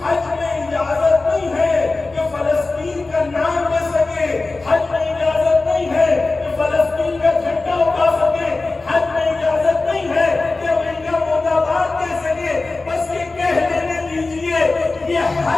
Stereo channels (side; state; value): right; quieter; 3.5 dB